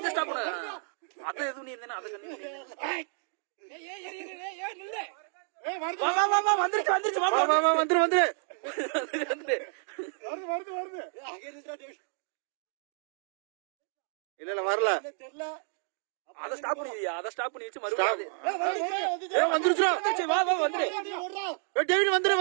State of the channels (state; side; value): silent; left; 58 dB below the other